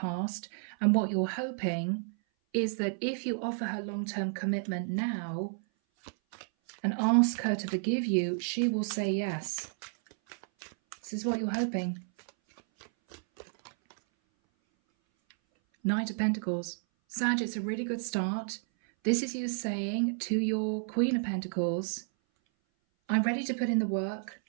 and what you're hoping is that if you offer her long-term commitment now, and ask her to forgive you, she will say yes. This is what you're hoping. Knight of Pentacles. Sag, it's a really good start. This is you saying to your Queen of Pentacles, I'm ready to put in the work.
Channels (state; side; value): silent; left; 57 dB below the other